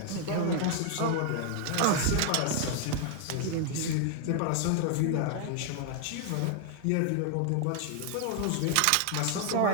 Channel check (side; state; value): both; different; correlation 0.00